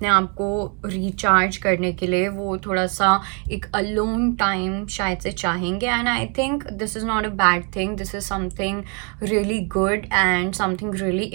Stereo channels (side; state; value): left; quieter; 36.7 dB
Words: आप को रिचार्ज करने के लिए वो थोड़ा सा एक अलोन टाइम शायद से चाहेंगे। And I think this is not a bad thing, this is something really good and something really